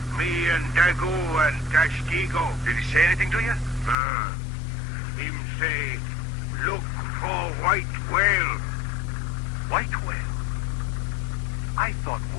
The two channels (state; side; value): drops out; right; at 4.0 s